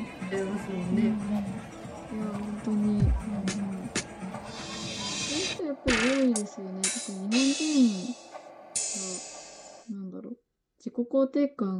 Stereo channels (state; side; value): identical; both; correlation 1.00